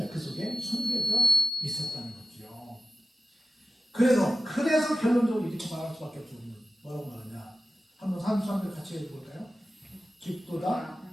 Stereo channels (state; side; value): normal; both; correlation 0.93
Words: 그 속에 숨겨져 있었다는 거죠. 그래서 결론적으로 이렇게 말할 수밖에 없죠. 뭐라고 말하냐? 한번 33절 같이 해볼까요? 깊도다